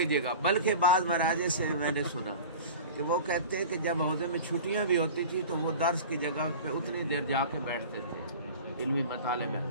گا. بلکہ بعض مراجع سے میں نے سنا کہ وہ کہتے ہیں کہ جب عہدے میں چھٹیاں بھی ہوتی تھی تو وہ درس کی جگہ پہ اتنی دیر جا کے بیٹھتے تھے علمی مطالعے میں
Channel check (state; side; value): inverted; both; correlation -0.37